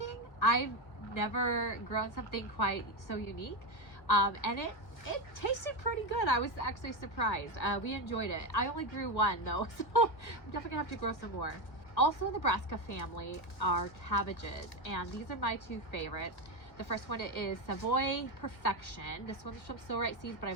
I've never grown something quite so unique. And it tasted pretty good. I was actually surprised. We enjoyed it. I only grew one though, so I'm definitely gonna have to grow some more. Also in the brassica family are cabbages, and these are my two favorites. The first one is Savoy Perfection. This one's from So Right Seeds, but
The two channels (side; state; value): right; late; 1.8 ms